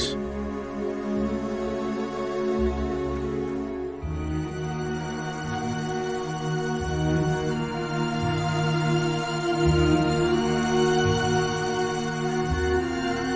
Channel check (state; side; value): identical; both; correlation 1.00